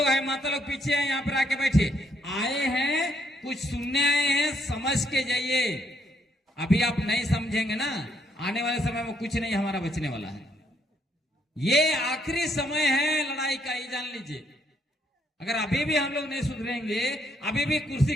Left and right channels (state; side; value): normal; both; correlation 0.72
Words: हैं माता लोग पीछे हैं, यहाँ पर आके बैठे। आए हैं कुछ सुनने आए हैं, समझ के जाइए। अभी आप नहीं समझेंगे ना, आने वाले समय में कुछ नहीं हमारा बचने वाला है। ये आखिरी समय है लड़ाई का, ये जान लीजिए। अगर अभी भी हम लोग नहीं सुधरेंगे, अभी भी कुर्सी